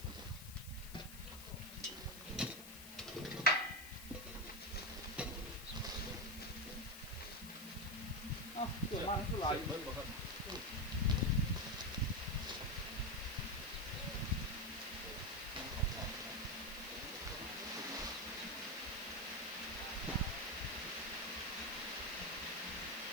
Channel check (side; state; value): left; noise; hiss, 13 dB below the sound